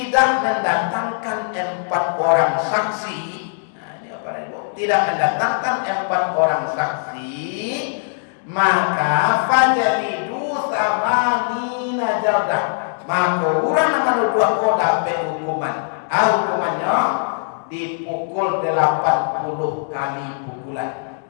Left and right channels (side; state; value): right; silent; digital silence